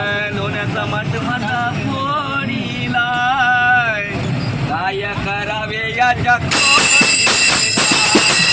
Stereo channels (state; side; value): identical; both; correlation 1.00